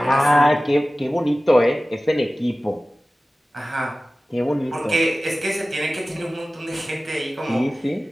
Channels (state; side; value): normal; both; correlation 0.97